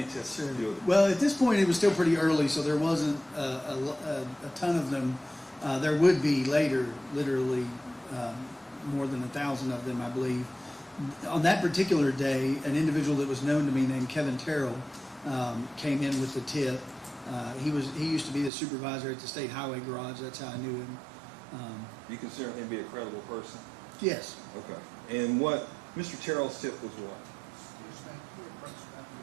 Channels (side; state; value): left; drops out; at 18.5 s